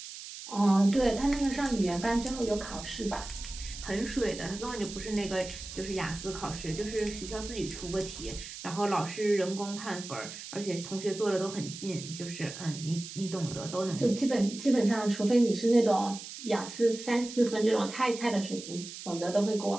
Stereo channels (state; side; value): noise; right; hiss, 11 dB below the sound